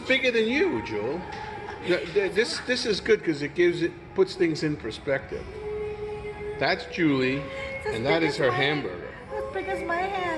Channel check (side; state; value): both; identical; correlation 1.00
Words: bigger than you, Jewel. This is good because it puts things in perspective. That's Julie, and that is her hamburger. As big as my